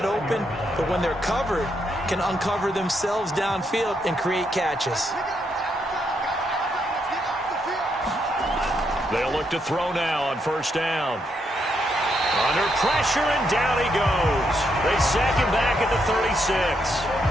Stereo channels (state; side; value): normal; both; correlation 0.78